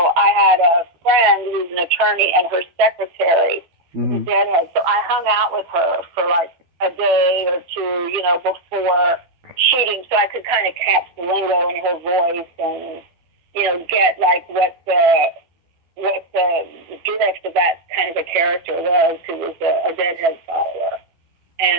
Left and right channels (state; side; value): late; left; 12 ms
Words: I had a friend who's an attorney, and her secretary was a Deadhead. So I hung out with her for like a day or two, before shooting, so I could kind of catch the lingo in her voice and, get like what the drift of that kind of a character was, who was a Deadhead follower.